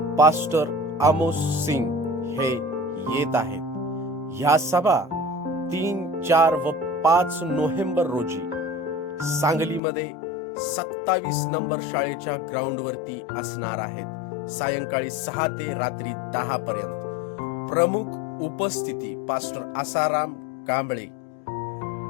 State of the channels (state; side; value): drops out; right; at 9.8 s